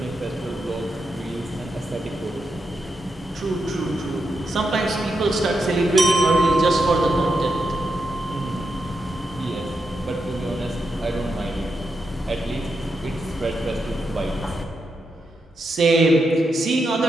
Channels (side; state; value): both; normal; correlation 0.85